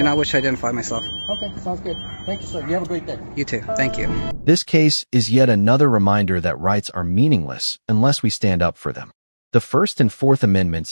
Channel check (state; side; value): inverted; both; correlation -1.00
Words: not wish to identify myself. Okay, sounds good. Thank you, sir. You have a great day. You too. Thank you. This case is yet another reminder that rights are meaningless unless we stand up for them. The First and Fourth